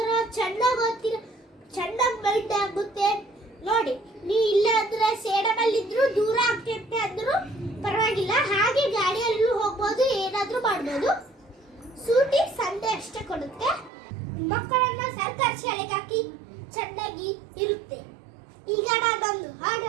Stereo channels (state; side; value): drops out; left; at 13.9 s